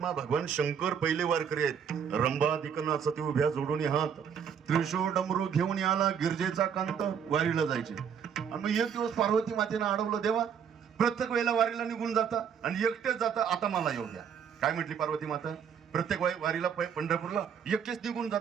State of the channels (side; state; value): left; quieter; 7.6 dB